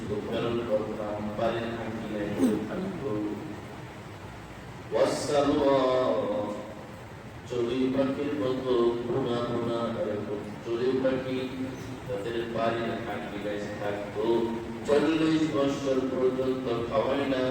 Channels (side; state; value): both; identical; correlation 1.00